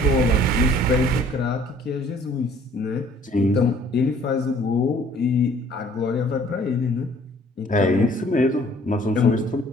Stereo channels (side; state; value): both; normal; correlation 0.56